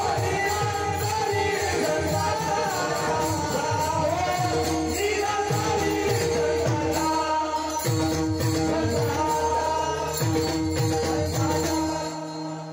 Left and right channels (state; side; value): identical; both; correlation 1.00